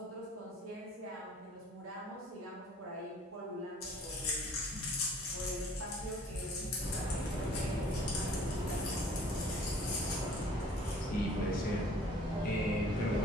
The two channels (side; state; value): both; normal; correlation 0.54